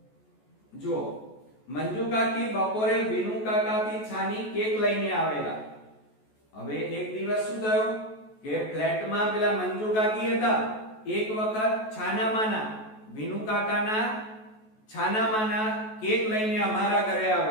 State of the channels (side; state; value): right; late; 14 ms